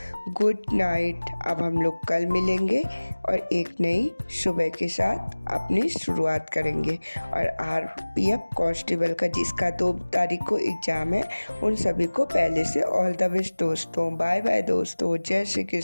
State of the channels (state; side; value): inverted; both; correlation -1.00